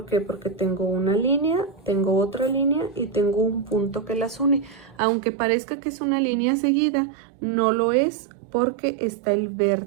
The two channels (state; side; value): drops out; left; at 5.0 s